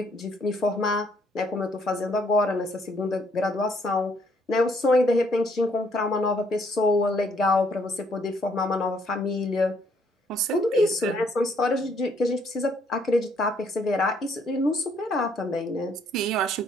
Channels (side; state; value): both; normal; correlation 0.68